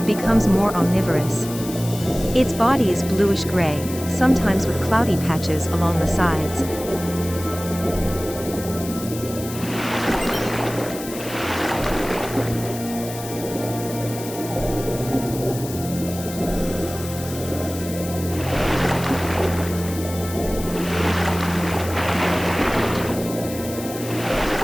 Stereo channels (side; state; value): left; noise; hiss, 12 dB below the sound